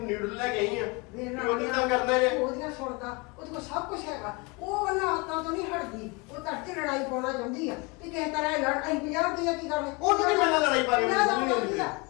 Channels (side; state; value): right; quieter; 27.7 dB